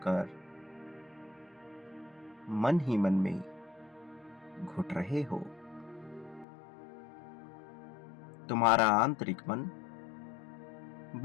कर मन ही मन में घुट रहे हो। तुम्हारा आंतरिक मन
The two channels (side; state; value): right; drops out; at 6.5 s